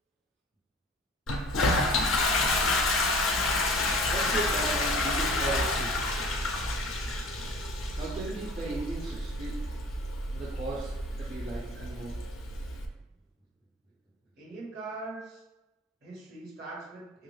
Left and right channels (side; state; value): both; normal; correlation 0.45